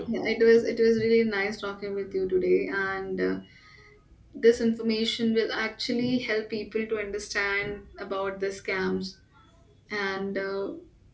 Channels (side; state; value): both; identical; correlation 1.00